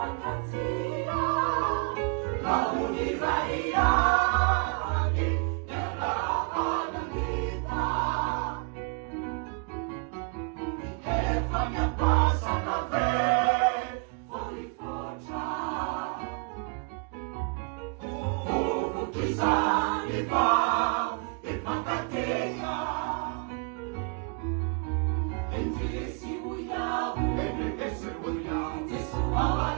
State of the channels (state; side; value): quieter; left; 35.1 dB